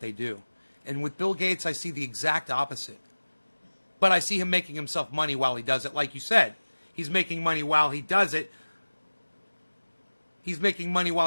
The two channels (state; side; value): inverted; both; correlation -1.00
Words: do. And with Bill Gates, I see the exact opposite. But I see him making himself money while he does it. Like you said, he's making money while he does it. He's making money while